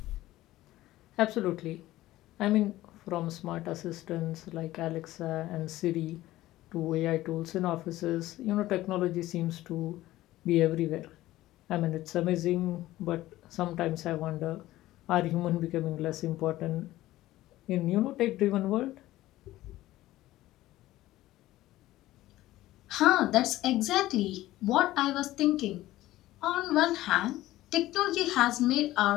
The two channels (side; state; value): right; quieter; 16.0 dB